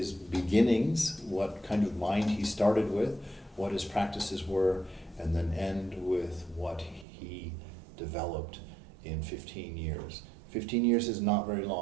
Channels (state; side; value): drops out; left; at 7.1 s